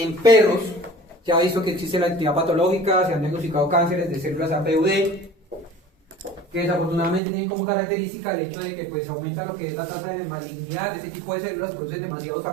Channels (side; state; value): left; drops out; at 7.2 s